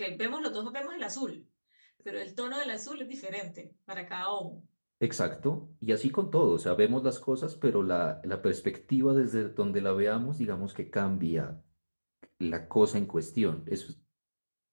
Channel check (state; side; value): inverted; both; correlation -1.00